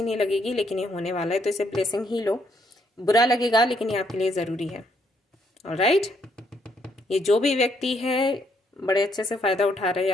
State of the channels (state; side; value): normal; both; correlation 0.72